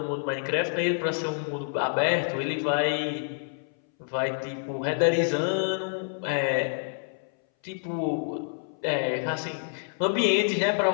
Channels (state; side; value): silent; right; 60 dB below the other